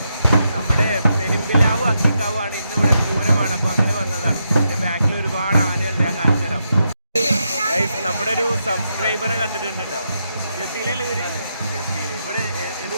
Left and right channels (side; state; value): both; inverted; correlation -0.82